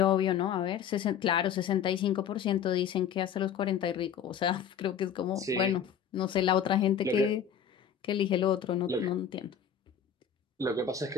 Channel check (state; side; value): quieter; right; 8.2 dB